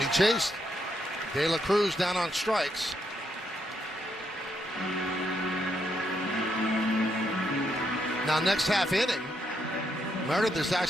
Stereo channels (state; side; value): normal; both; correlation 0.78